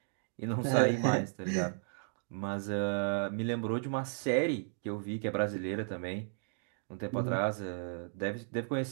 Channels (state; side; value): silent; left; digital silence